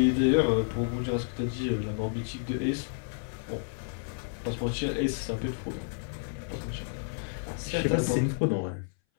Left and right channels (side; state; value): right; silent; 58 dB below the other